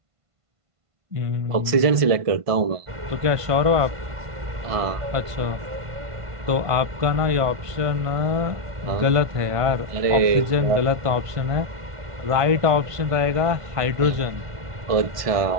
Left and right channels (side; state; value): left; late; 1.5 ms